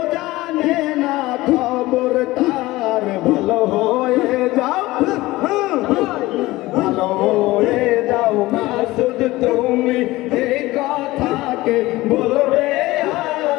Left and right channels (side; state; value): right; quieter; 18.9 dB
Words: জানে না খবর তার। ভালো হয়ে যাও, ভালো হয়ে যাও মাসুদ তুমি, এই কথাকে বলবে